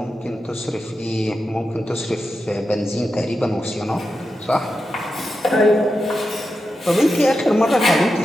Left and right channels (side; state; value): both; normal; correlation 0.89